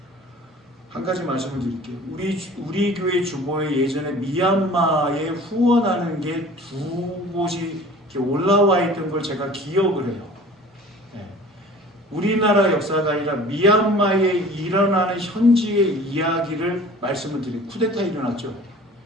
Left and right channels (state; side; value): normal; both; correlation 0.45